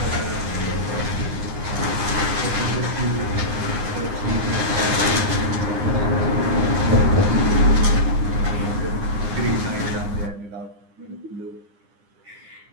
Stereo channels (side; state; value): left; late; 9.8 ms